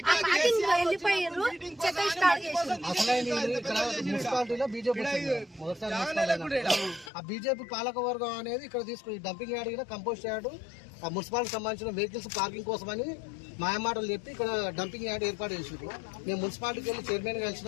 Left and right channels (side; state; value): right; drops out; at 7.1 s